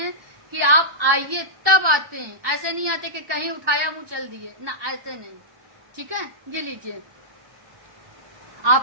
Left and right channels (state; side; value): late; left; 1.5 ms